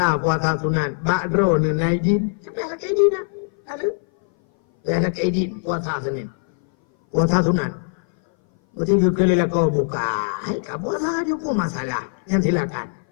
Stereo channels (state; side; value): silent; right; 59 dB below the other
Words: sunat. Bakdro ni naidin. Sampai ada kaidin lah. Ada kaidin, puasa Senin. Puasa sunat. Betul kali lah kau buka. Hai, kau puasa je pun masalah. Yang silakan.